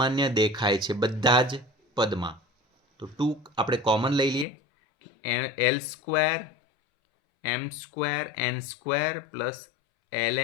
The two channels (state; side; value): drops out; right; at 4.5 s